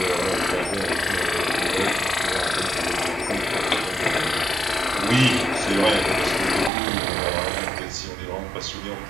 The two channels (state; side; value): drops out; left; at 6.7 s